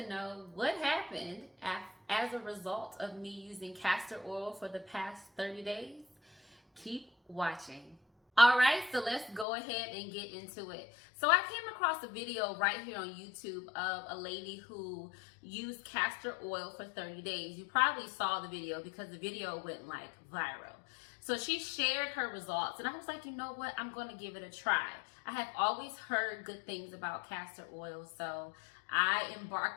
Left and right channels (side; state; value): right; drops out; at 9.5 s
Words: know what happened as a result of me using castor oil for the past 30 days, keep watching. All right, so let's go ahead and get into it. So I came across a video right here on YouTube of a lady who used castor oil for 30 days. You probably saw the video because the video went like viral. So she shared her results and I was like, you know what? I'm going to give it a try. I have always heard good things about castor oil. So I